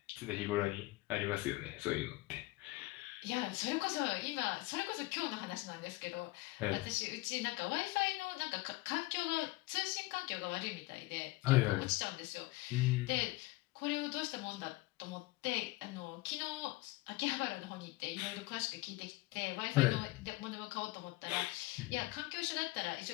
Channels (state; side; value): quieter; right; 20.5 dB